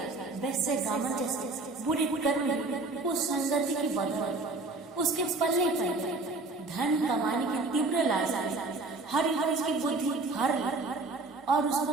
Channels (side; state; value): left; quieter; 3.3 dB